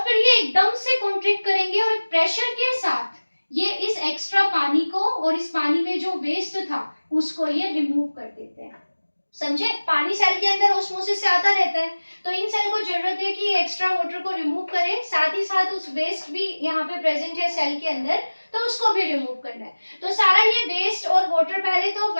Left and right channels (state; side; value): inverted; both; correlation -1.00